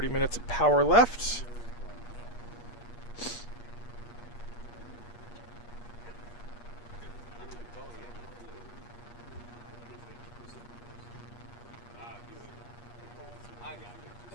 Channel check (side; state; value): right; late; 8.4 ms